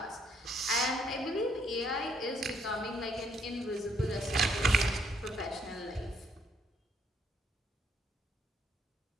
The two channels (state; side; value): normal; both; correlation 0.69